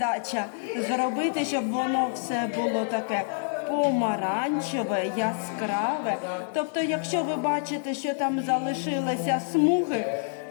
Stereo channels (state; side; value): silent; right; digital silence